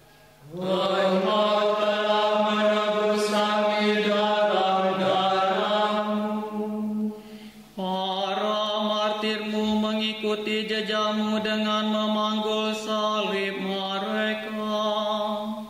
Engkau telah menebus kami dalam darah-Mu. Para martir-Mu mengikuti jejak-Mu dengan memanggul salib mereka.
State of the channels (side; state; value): both; identical; correlation 1.00